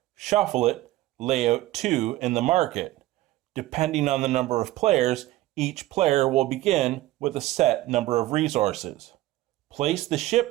Shuffle it, lay out 2 in the market. Depending on the number of players, each player will begin with a set number of resources. Place the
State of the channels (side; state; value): left; quieter; 16.4 dB